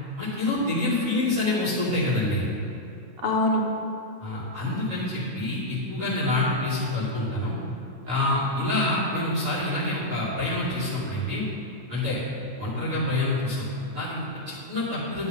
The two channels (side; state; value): left; late; 16 ms